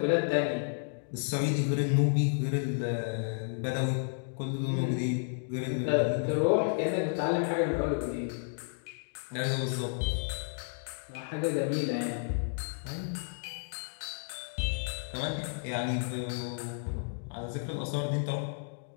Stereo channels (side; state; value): right; silent; digital silence